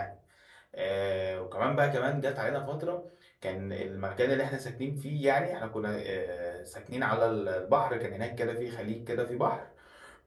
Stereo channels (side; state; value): both; identical; correlation 1.00